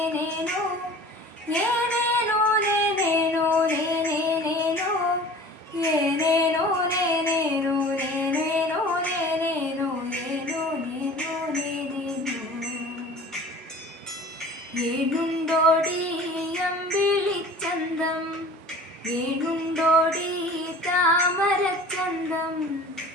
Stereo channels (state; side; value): normal; both; correlation 0.43